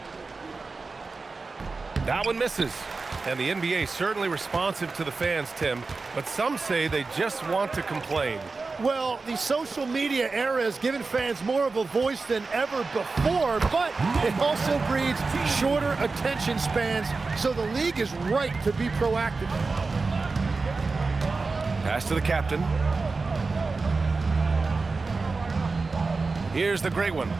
That one misses. And the NBA certainly responsive to the fans, Tim, but some say they just want to complain. Well, the social media era has given fans more of a voice than ever before, but it also breeds shorter attention spans, so the league is right to be proactive. Pass to the captain. Here's the great one.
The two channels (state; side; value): quieter; left; 4.0 dB